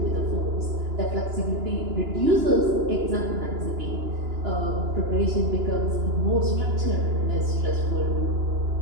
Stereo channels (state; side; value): late; left; 2.9 ms